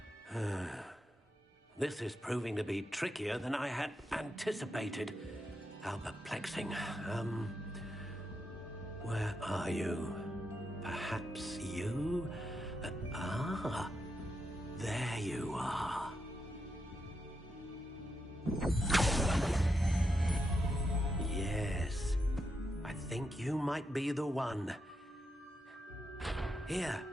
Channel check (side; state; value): both; normal; correlation 0.84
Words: This is proving to be trickier than I had anticipated. How perplexing. Where are you? Perhaps you? There you are. Yes, I think you might be the one. Here,